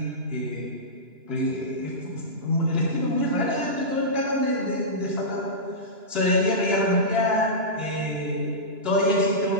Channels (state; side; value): late; left; 2.9 ms